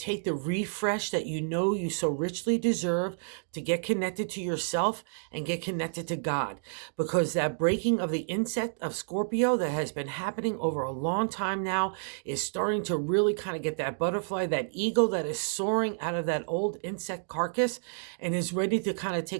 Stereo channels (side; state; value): left; silent; digital silence